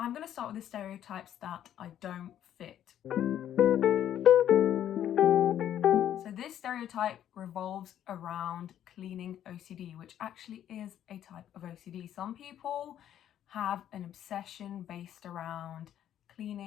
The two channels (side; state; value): right; quieter; 10.8 dB